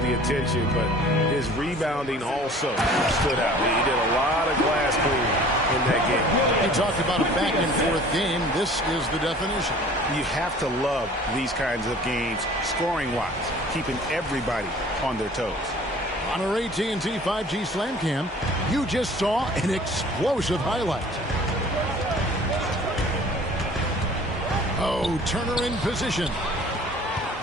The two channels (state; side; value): normal; both; correlation 0.48